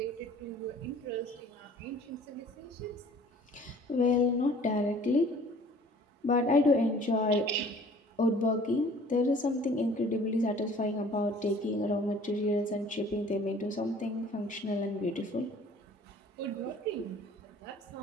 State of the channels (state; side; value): normal; both; correlation 0.51